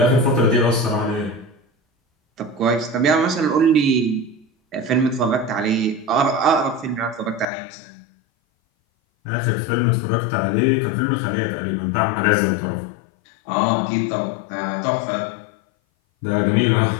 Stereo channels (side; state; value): right; drops out; at 7.5 s